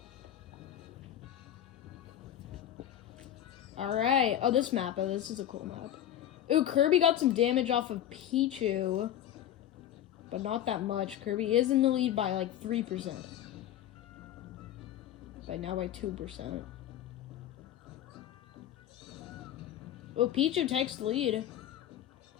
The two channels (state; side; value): quieter; right; 11.4 dB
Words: Alright. Oh, this map. Oh, this is a cool map. Ooh, Kirby got some damage off of Pichu. But not that much. Kirby is in the lead by like 3%. Now by 2%. Oh, Pichu takes the lead.